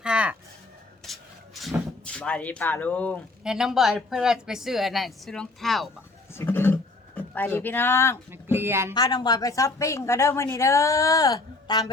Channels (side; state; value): right; quieter; 3.2 dB